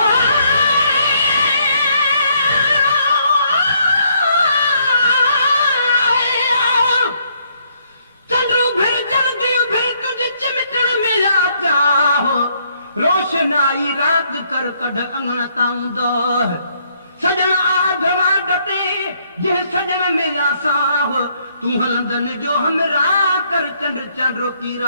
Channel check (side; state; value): both; inverted; correlation -0.70